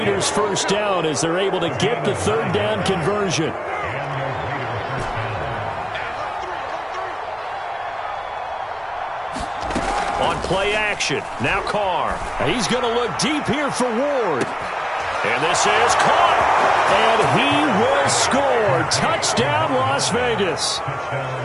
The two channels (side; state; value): both; identical; correlation 1.00